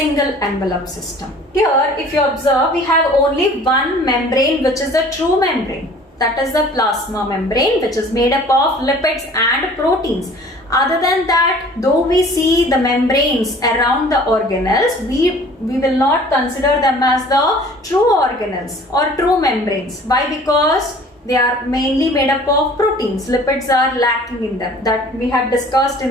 envelope system? Here, if you observe, we have only one membrane, which is the true membrane. That is the plasma membrane, which is made up of lipids and proteins. Other than that, though we see the membranes around the organelles, we will not consider them as the true organelles or true membranes. Why? Because they are mainly made up of proteins. Lipids are lacking in them. That we have discussed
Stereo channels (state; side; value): normal; both; correlation 0.49